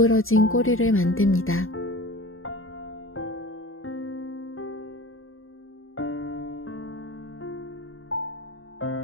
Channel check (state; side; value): late; right; 0.60 ms